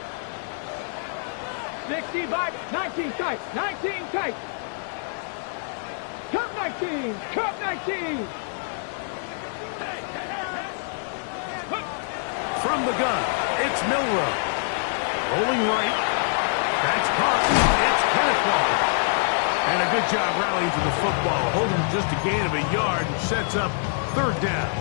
65, 19 tight, 19 tight. Cup 19, cup 19. From the gun, it's Milrow. Rolling right. That's caught. It's Kenneth Walker. And a good job rallying to the football. Holding just a gain of a yard and sets up 3rd down.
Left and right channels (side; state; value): right; silent; digital silence